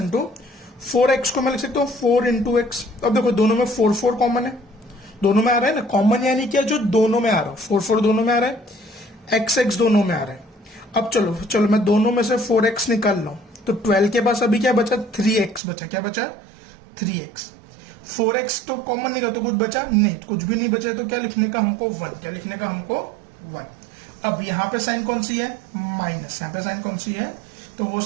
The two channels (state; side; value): drops out; left; at 15.6 s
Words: 4x को मैं लिख सकता हूँ 4 × x। अब देखो दोनों में 4 4 कॉमन है, दोनों में आ रहा है ना कॉमन, यानी क्या जो दोनों में आ रहा है, 4 4 दोनों में आ रहा है, x x दोनों में आ रहा है। अब चलो मैं दोनों में से 4x निकाल रहा हूं, तो 12 के पास अभी क्या बचा, 3x बचा, क्या बचा 3x। 4x तो कॉमन नहीं, तो कुछ बचा नहीं, कुछ भी नहीं बचा, तो क्या लिखने का हमको 1, क्या लिखने का हमको 1। अब यहाँ पे साइन कौन सी है, माइनस, यहाँ पे साइन कौन सी है, तो वो